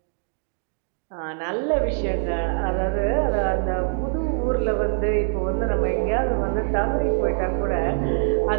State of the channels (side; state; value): left; silent; digital silence